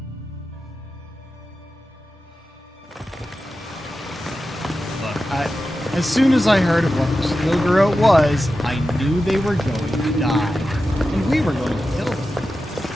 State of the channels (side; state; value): both; normal; correlation 0.92